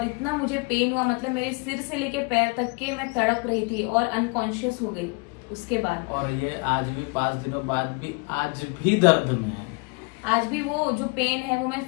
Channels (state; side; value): quieter; right; 31.0 dB